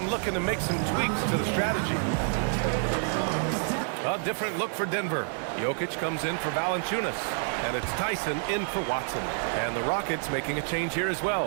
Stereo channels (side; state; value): left; silent; digital silence